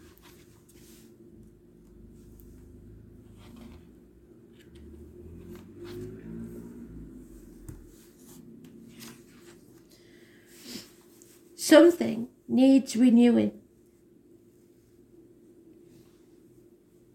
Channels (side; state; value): both; identical; correlation 1.00